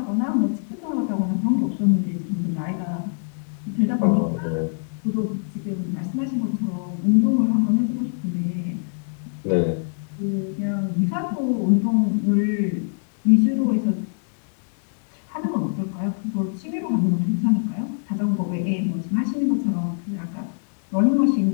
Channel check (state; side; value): silent; right; digital silence